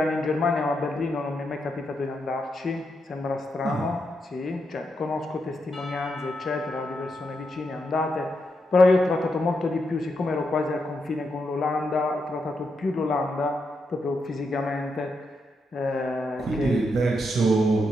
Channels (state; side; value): normal; both; correlation 0.83